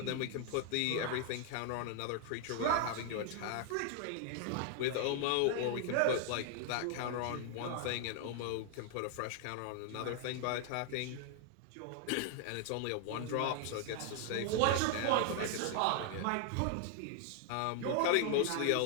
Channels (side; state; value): both; different; correlation 0.00